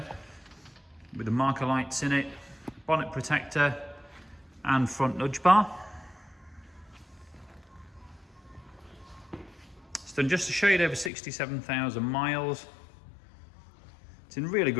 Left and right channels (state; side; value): drops out; right; at 11.1 s